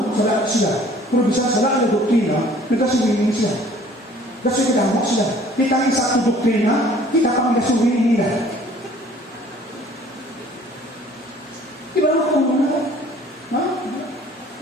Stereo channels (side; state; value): both; normal; correlation 0.54